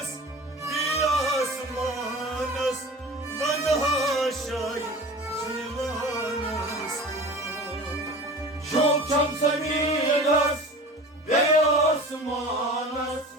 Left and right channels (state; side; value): normal; both; correlation 0.38